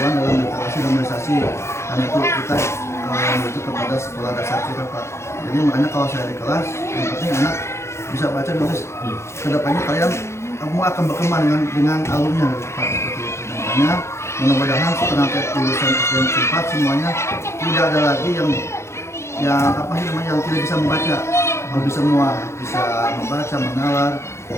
dalam literasi dan memobilisasi. Karena itu kita menuju kepada sekolah dasar kita Pak. Jadi makanya kalau saya di kelas yang penting anak bisa baca nulis. Kedepannya kalian akan berkembang dengan alumnya Pak seperti itu. Makanya mudah-mudahan setelah lulusan SDN 4 semuanya tidak ada lagi yang tidak bisa membaca. Bisa semua bisa membaca, menalar,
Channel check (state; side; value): late; right; 0.13 ms